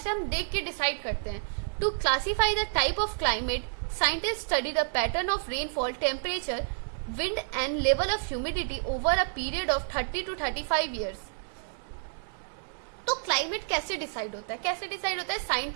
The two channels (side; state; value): left; silent; digital silence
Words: हम देख के डिसाइड करते हैं। To classify the type of climate, scientist study the pattern of rainfall, temperature, wind and level of humidity over a period of 30 to 35 years. तो क्लाइमेट कैसे डिसाइड होता है? कैसे डिसाइड होता है?